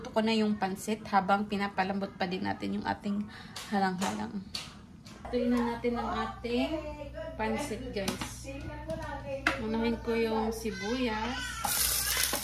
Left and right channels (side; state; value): both; identical; correlation 1.00